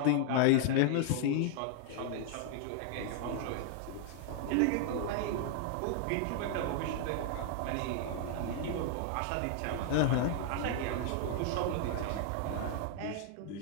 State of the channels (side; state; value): both; different; correlation 0.00